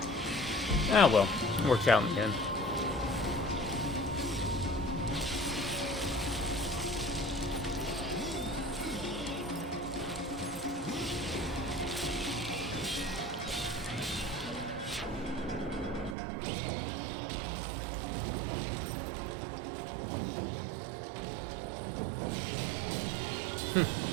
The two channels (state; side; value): drops out; left; at 16.2 s